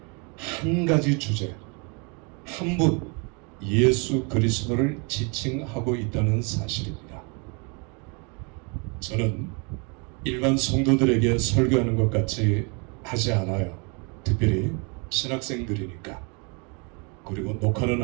한 가지 주제, 한 분, 예수 그리스도를 지칭하고 있다는 사실입니다. 저는 일반 성도들에게 설교하는 것 같이 하지 않아요. 특별히 신학생들이니까. 그리고 녹화는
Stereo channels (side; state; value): left; quieter; 33.4 dB